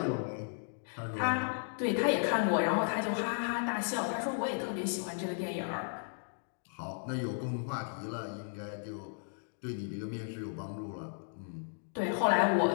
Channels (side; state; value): right; silent; digital silence